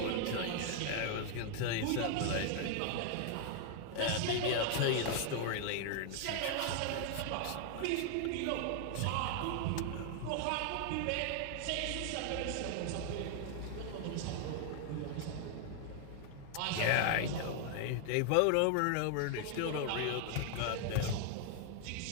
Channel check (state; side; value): different; both; correlation 0.00